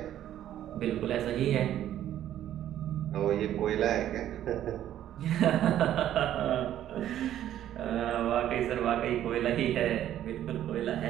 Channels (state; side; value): quieter; left; 11.7 dB